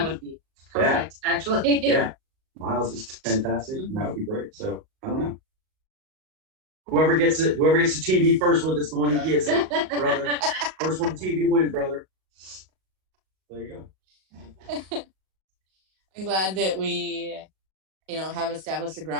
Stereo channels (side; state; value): left; late; 37 ms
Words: would be perfect, actually. Yeah. Miles is fantastic. And that would be great. So I don't know. Whoever gets the TV first with it's the one who gets it, brother. First one TV wins, brother. There you go. I'm glad that we, have established a